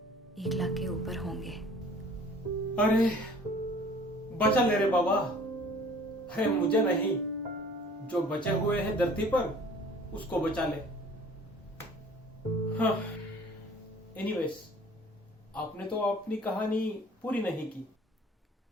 1 लाख के ऊपर होंगे। अरे बचा ले रे बाबा। अरे मुझे नहीं, जो बचे हुए हैं धरती पर उसको बचा ले। हाँ, एनीवेज, आपने तो अपनी कहानी पूरी नहीं की।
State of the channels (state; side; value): normal; both; correlation 0.50